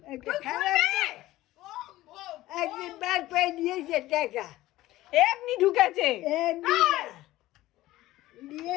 একদিন বার করে দিয়েছে টাকা, এমনি ঢুকেছে।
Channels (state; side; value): quieter; right; 16.5 dB